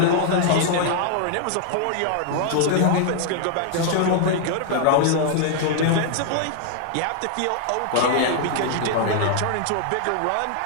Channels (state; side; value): different; both; correlation -0.01